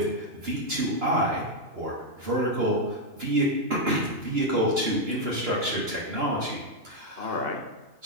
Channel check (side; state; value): left; late; 2.9 ms